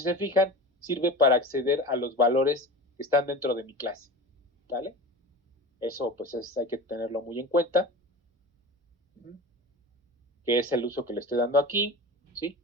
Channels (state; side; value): normal; both; correlation 0.32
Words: se fijan, sirve para acceder a los valores que están dentro de mi clase, ¿vale? Eso pues hay que tenerlo muy en cuenta, que es el uso que le estoy dando aquí, ¿sí?